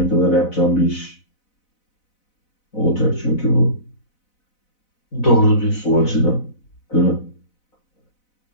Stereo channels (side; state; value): right; late; 4.0 ms